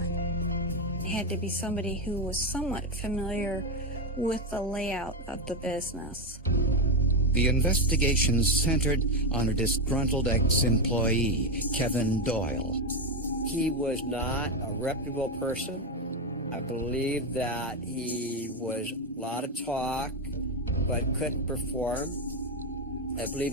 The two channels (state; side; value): normal; both; correlation 0.09